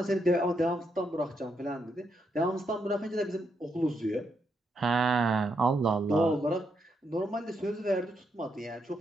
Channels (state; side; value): normal; both; correlation 0.79